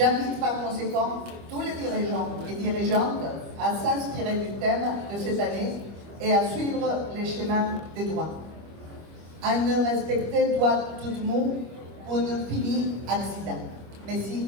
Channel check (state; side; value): late; left; 25 ms